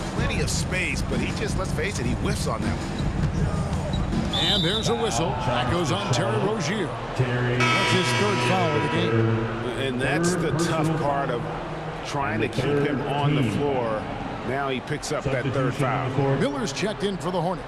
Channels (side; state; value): both; identical; correlation 1.00